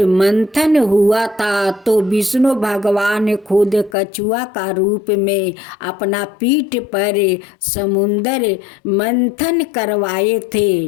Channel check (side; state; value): right; drops out; at 4.0 s